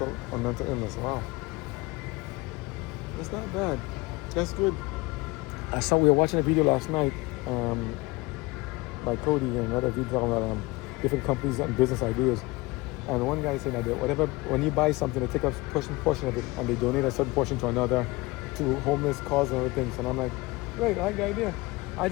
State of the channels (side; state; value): right; quieter; 22.9 dB